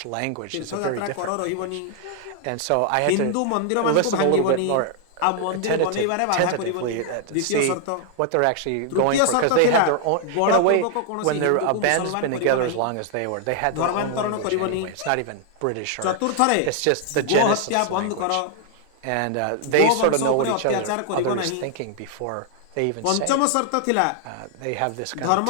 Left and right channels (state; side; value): different; both; correlation 0.00